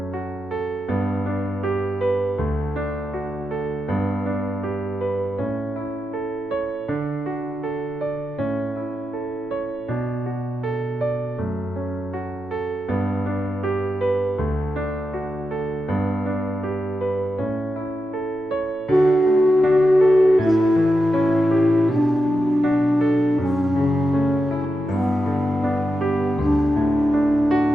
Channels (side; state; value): both; normal; correlation 0.88